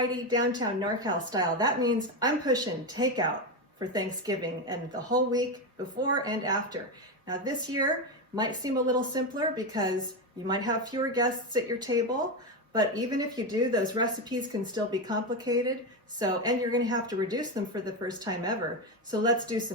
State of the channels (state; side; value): normal; both; correlation 0.12